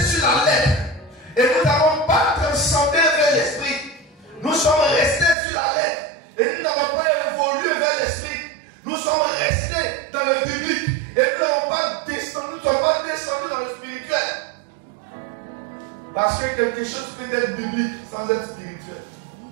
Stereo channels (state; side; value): drops out; left; at 5.4 s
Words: sur la lettre. Et nous n'avons pas transcendé vers l'esprit. Nous sommes restés sur la lettre. Et nous n'avons pas évolué vers l'esprit. Nous sommes restés dans le biblique. Et nous n'avons pas descendu, nous ne sommes pas descendus dans le spirituel. Parce que quelque chose peut être biblique sans être spirituel.